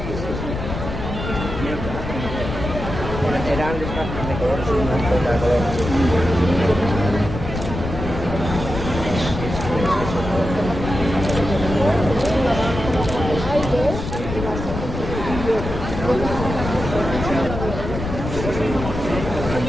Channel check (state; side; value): noise; left; rumble, 6 dB below the sound